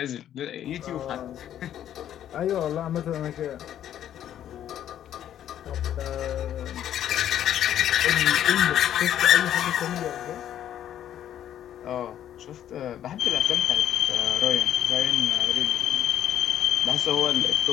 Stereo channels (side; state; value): right; quieter; 10.8 dB